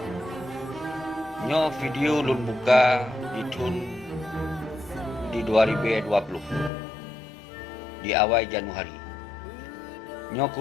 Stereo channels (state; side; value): drops out; right; at 6.7 s